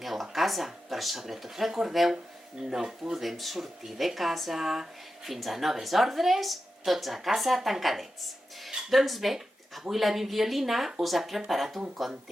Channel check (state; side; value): normal; both; correlation 0.91